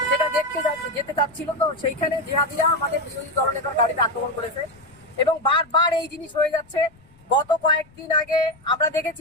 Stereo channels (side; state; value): left; noise; rumble, 28 dB below the sound